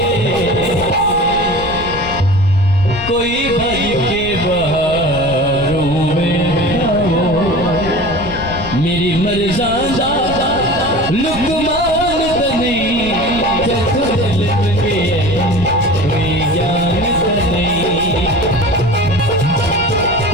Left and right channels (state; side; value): noise; left; rumble, 12 dB below the sound